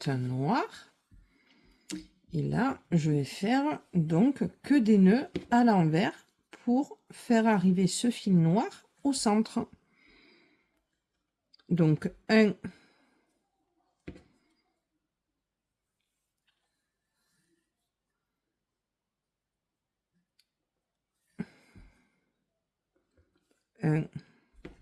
un noir. Et là, je vais faire donc que des nœuds à l'envers pour faire arriver ce fil noir au centre. Donc 1 1,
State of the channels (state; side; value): identical; both; correlation 1.00